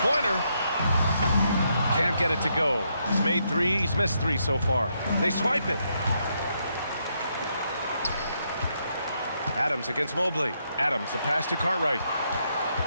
Can't get it to go. He's made 3. He's missed 3 so far. They swipe it. Adams against Mobley. Adams, the pass to Cartwright.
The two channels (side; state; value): both; inverted; correlation -0.78